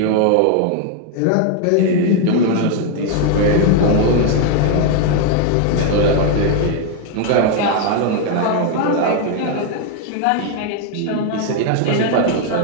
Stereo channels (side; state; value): both; different; correlation 0.00